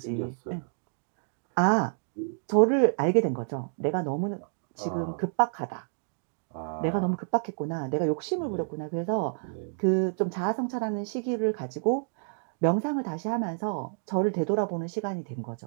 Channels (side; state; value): left; silent; digital silence